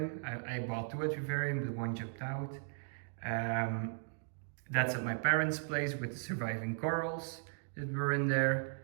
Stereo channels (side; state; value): left; silent; digital silence